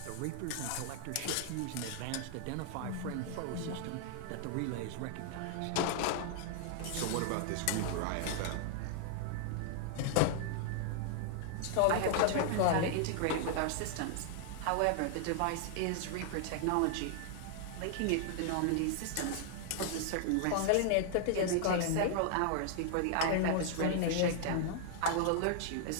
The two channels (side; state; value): both; different; correlation -0.01